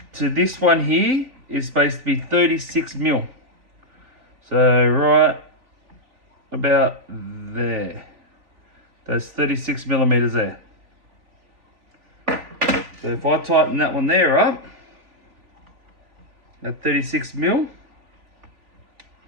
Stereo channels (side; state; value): left; late; 3.4 ms